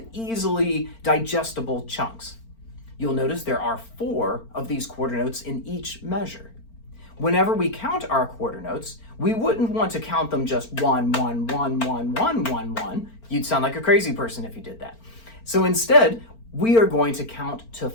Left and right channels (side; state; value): right; late; 4.4 ms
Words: easily digestible chunks. You'll notice there are 4 of these quarter notes in each measure. Whenever we count our quarter notes, we wouldn't want to count them just 1, 1, 1, 1, 1, 1, 1. You'd sound like a crazy person if you did that. So instead, we are going to count to